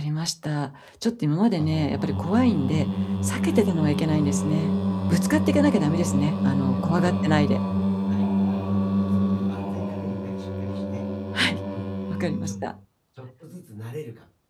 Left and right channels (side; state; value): both; identical; correlation 1.00